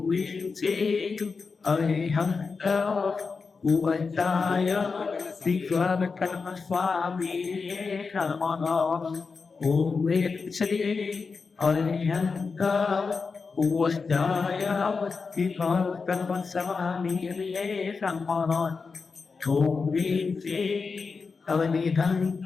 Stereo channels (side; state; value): right; quieter; 4.8 dB